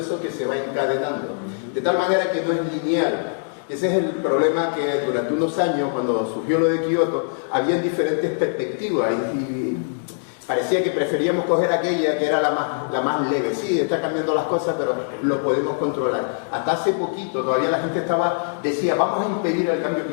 que se va encadenando. De tal manera que no es lineal. Ese es el problema que durante unos años, cuando surgió lo de Kioto, había diferentes perspectivas y parecía que preferíamos coger aquella que era la más leve. Sí, está cambiando las cosas, pero lo podemos controlar. Hasta hace poquito todavía la gente decía, vamos a impedir el cambio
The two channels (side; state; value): right; silent; digital silence